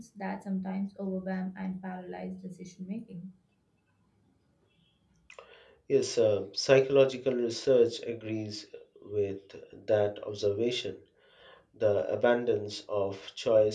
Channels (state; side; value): identical; both; correlation 1.00